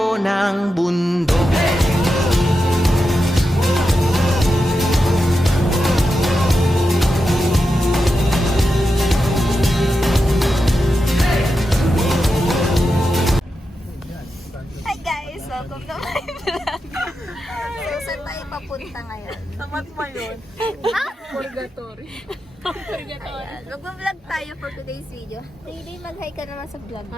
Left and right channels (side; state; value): both; normal; correlation 0.89